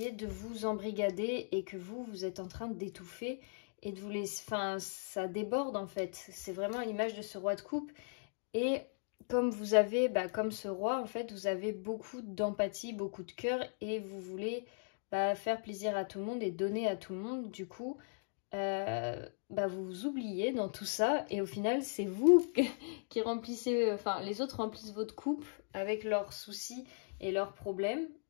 de vous embrigader et que vous êtes en train d'étouffer et de vous laisser, enfin ça déborde en fait, c'est vraiment l'image de ce roi de coupe et comme vous avez, comme ce roi en fait, vous avez beaucoup d'empathie, beaucoup de cœur et vous voulez faire plaisir à tout le monde et donner à tout le monde, du coup vous vous oubliez dans tout ça et au final c'est vous qui remplissez, enfin les autres remplissent votre coupe avec leurs soucis et leurs problèmes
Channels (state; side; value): silent; right; digital silence